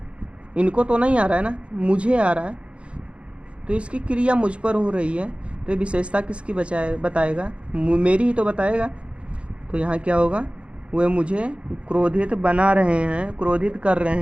इनको तो नहीं आ रहा है ना, मुझे आ रहा है, तो इसकी क्रिया मुझ पर हो रही है, तो ये विशेषता किसकी बताएगा, मेरी ही तो बताएगा। तो यहाँ क्या होगा, वे मुझे क्रोधित बना रहे हैं, क्रोधित कर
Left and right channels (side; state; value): left; late; 0.059 ms